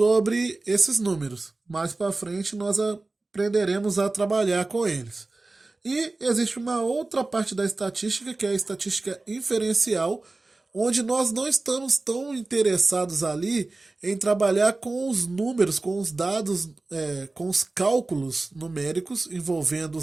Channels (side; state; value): left; quieter; 3.3 dB